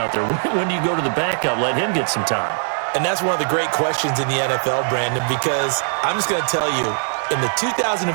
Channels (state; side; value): silent; left; 65 dB below the other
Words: there. When you go to the backup, let him get some time. And that's one of the great questions in the NFL, Brandon, because I'm just going to tell you, in the 2015